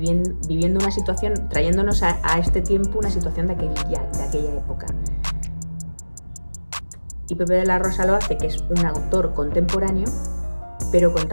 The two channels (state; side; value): inverted; both; correlation -1.00